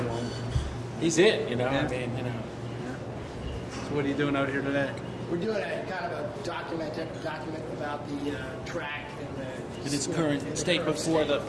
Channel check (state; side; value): identical; both; correlation 1.00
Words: the one. he's it. You know, Yeah. I mean, you know. So what are you doing out here today? We're doing a kind of a document about the track and the In its you know, current in the state current before state.